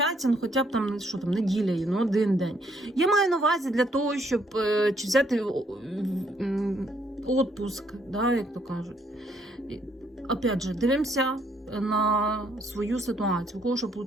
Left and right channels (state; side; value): normal; both; correlation 0.69